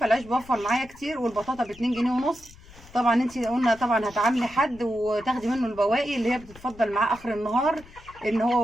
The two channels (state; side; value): noise; left; rumble, 22 dB below the sound